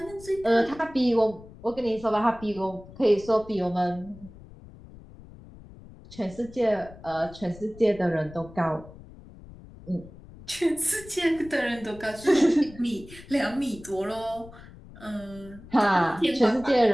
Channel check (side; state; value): left; noise; rumble, 19 dB below the sound